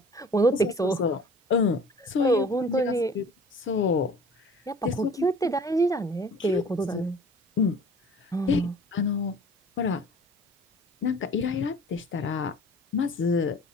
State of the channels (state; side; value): normal; both; correlation 0.47